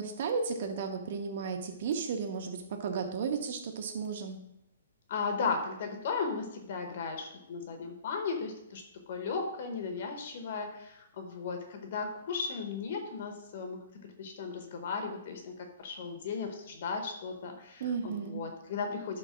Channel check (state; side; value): inverted; both; correlation -0.47